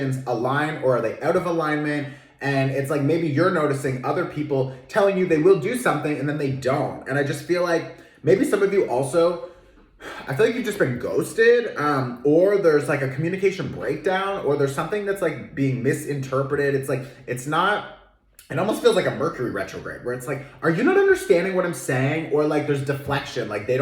align, or are they out of alignment? And it's like maybe you're noticing other people telling you they will do something and then they don't. And I just feel like maybe some of you also, I feel like you've just been ghosted, or there's like a communication breakdown, or there's something that's like being misinterpreted. It's like, it's not, it almost feels like a Mercury retrograde where it's like, are you not understanding what I'm saying? Or like there's deflection, like they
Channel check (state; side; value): identical; both; correlation 1.00